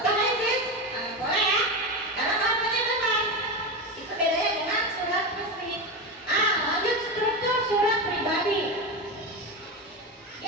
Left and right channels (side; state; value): both; normal; correlation 0.17